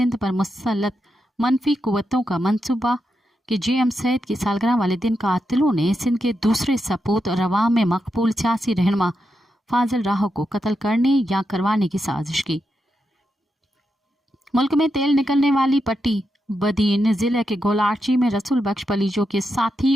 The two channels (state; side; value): normal; both; correlation 0.86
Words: پر مسلط منفی قوتوں کا منصوبہ کہ جیم سید کی سالگرہ والے دن قاتلوں نے سندھ کے دوسرے سپوت اور عوام میں مقبول سیاسی رہنما فاضل راہو کو قتل کرنے یا کروانے کی سازش کی۔ ملک میں تیل نکلنے والی پٹی بدین ضلع کے گولاچی میں رسول بخش پلیجو کے ساتھی